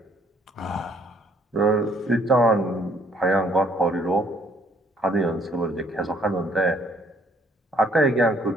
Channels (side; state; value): both; normal; correlation 0.64